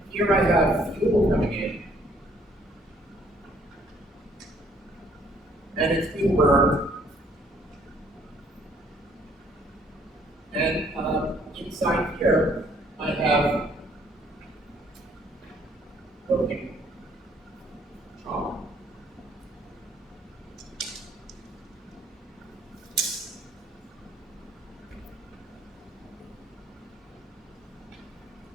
here I have fuel coming in, and it's being burned. And inside here, I have broken chalk.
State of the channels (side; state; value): both; normal; correlation 0.63